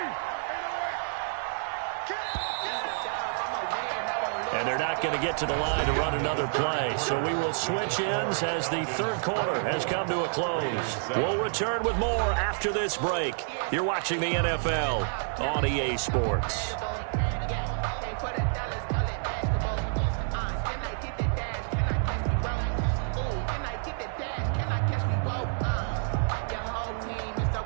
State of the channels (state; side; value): silent; left; digital silence